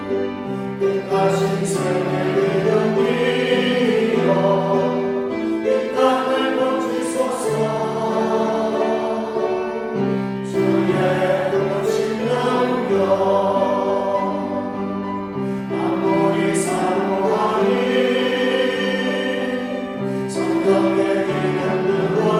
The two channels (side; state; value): both; identical; correlation 1.00